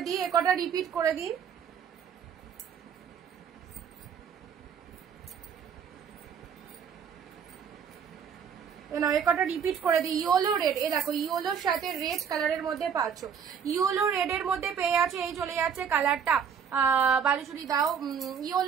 দিই, একটা রিপিট করে দিই। একটা রিপিট করে দিই। ইয়েলো রেড, এ দেখো ইয়েলোর সাথে রেড কালারের মধ্যে পাচ্ছ, ইয়েলো রেড এর মধ্যে পেয়ে যাচ্ছে। এই চলে যাচ্ছে কালারটা, বালুচুরি দাও,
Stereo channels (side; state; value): left; quieter; 7.4 dB